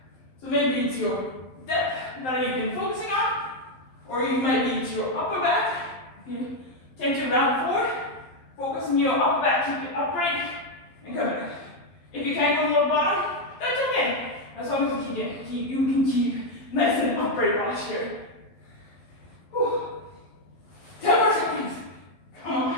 So maybe it's your depth that you've been focusing on. Or you might be it's your upper back. If you tend to round forward, focus on your upper back, keep it upright, and come back. If you can't go to the bottom, that's okay. As long as you can keep nice and upright posture. Whew. 10 more seconds. Come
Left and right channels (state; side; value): late; right; 12 ms